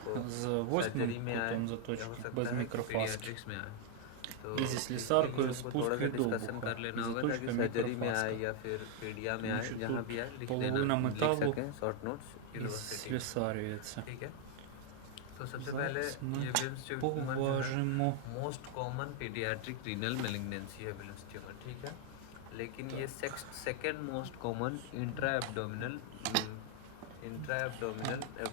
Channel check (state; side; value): different; both; correlation 0.00